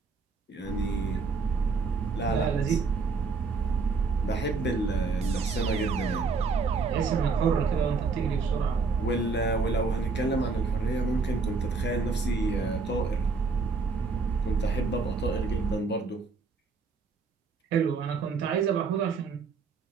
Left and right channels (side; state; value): left; quieter; 4.5 dB